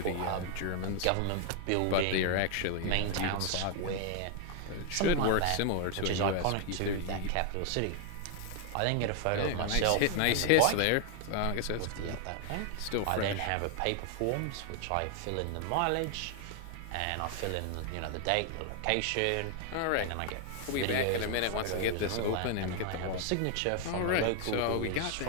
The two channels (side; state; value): both; different; correlation 0.00